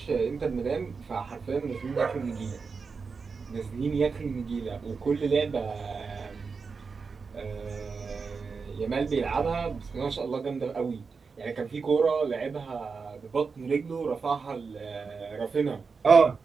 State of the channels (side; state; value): left; quieter; 5.0 dB